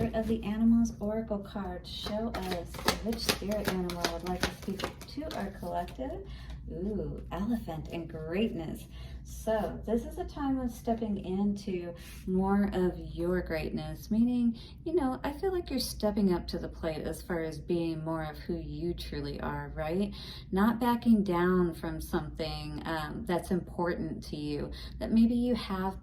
of the Animals Oracle card. Show us which spirit animal would like to speak to our collective. Ooh, elephant and greatness. So this is a time of stepping into more of your greatness, meaning, I feel like you're stepping up to the plate as far as being more of who you truly are, right? Not backing down from something that's important to you that maybe you have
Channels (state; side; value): identical; both; correlation 1.00